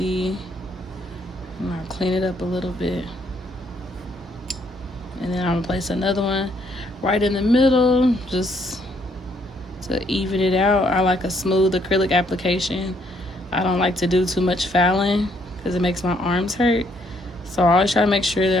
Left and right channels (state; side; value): normal; both; correlation 0.69